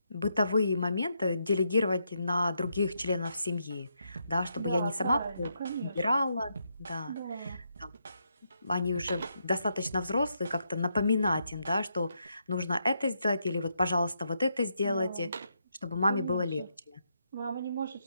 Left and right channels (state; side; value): inverted; both; correlation -0.79